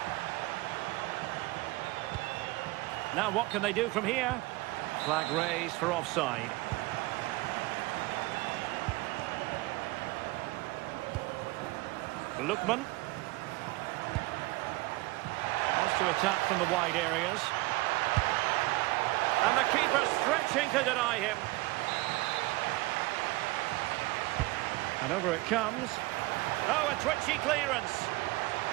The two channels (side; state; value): left; quieter; 21.3 dB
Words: Now what can they do from here? Flag raised for offside. Lookman. Wants to attack from the wide areas. And the keeper stretching to deny him. And over it comes. Oh, a twitchy clearance.